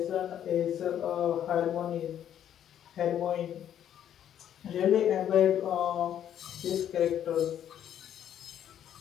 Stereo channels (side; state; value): right; quieter; 10.2 dB